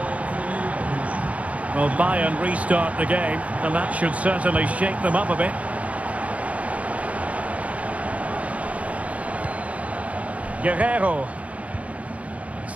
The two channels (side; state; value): left; late; 0.066 ms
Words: Well, Bayern restart the game, and that should certainly shake them up a bit. Guerrero.